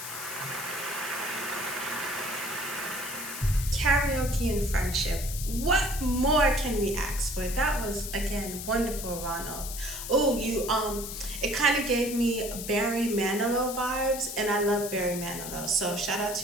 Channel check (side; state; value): left; noise; hiss, 8 dB below the sound